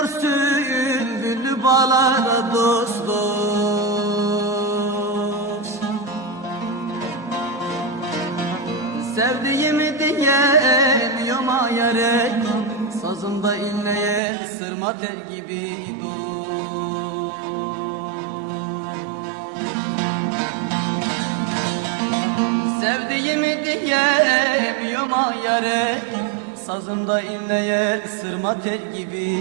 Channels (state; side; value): drops out; left; at 14.2 s